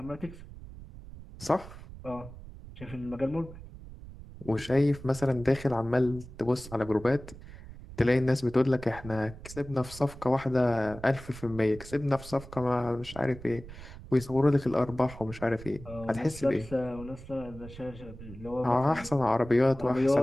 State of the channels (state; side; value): noise; right; rumble, 15 dB below the sound